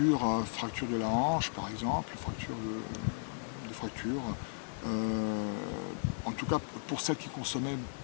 de la hanche par exemple, des fractures, en tout cas pour celles qui consommaient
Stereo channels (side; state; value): right; silent; digital silence